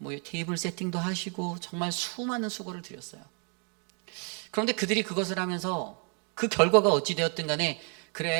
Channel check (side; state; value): left; quieter; 38.8 dB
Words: 테이블 세팅도 하시고 정말 수많은 수고를 드렸어요. 그런데 그들이 그것을 하면서 그 결과가 어찌 되었든 간에